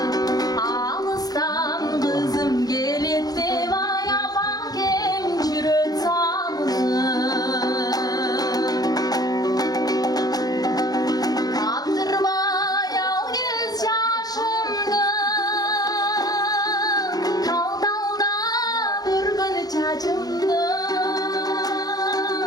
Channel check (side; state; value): right; late; 0.19 ms